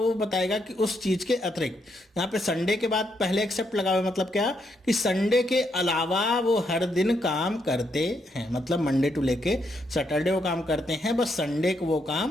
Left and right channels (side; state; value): both; normal; correlation 0.77